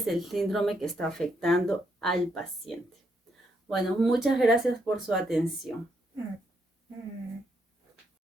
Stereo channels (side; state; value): both; normal; correlation 0.76